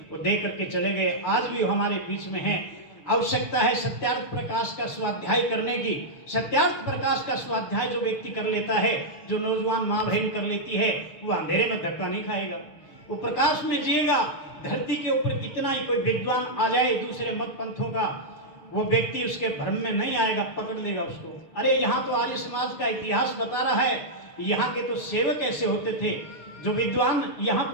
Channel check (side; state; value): right; late; 6.6 ms